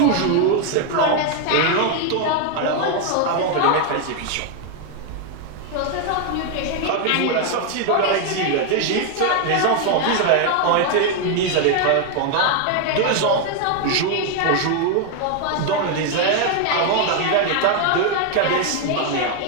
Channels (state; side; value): different; both; correlation 0.01